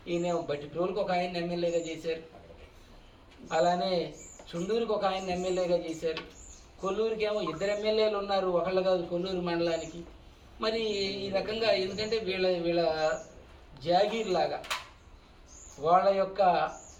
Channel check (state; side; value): identical; both; correlation 1.00